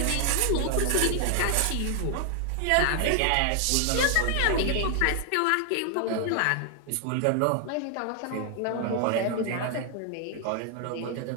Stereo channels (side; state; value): both; different; correlation 0.00